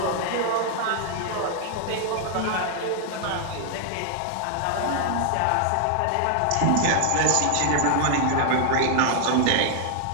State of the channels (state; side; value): different; both; correlation 0.00